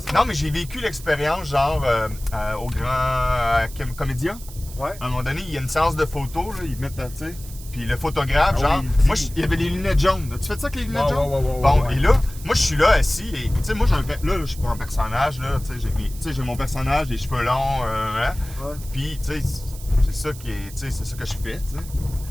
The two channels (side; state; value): right; noise; hiss, 17 dB below the sound